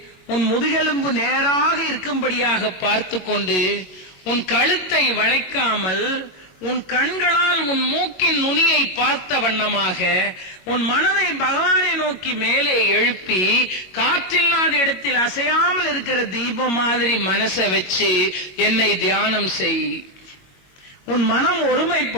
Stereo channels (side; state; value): right; late; 22 ms